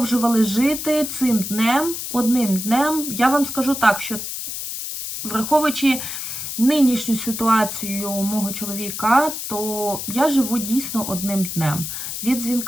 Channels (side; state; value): left; noise; hiss, 6 dB below the sound